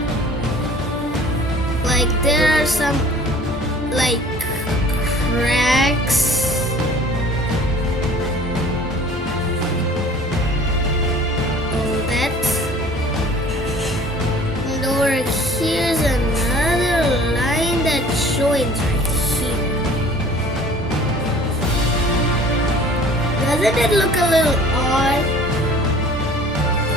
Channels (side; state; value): both; normal; correlation 0.49